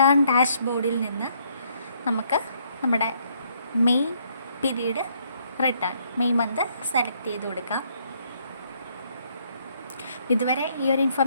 ഡാഷ്ബോർഡിൽ നിന്ന് നമുക്ക് നമ്മുടെ May period return May month select ചെയ്ത് കൊടുക്കാം. ഇതുവരെ ഈ ഒരു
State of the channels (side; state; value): both; inverted; correlation -0.69